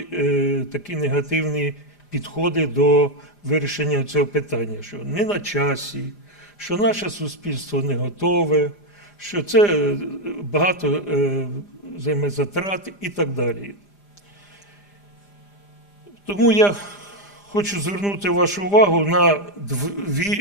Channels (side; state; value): right; late; 5.0 ms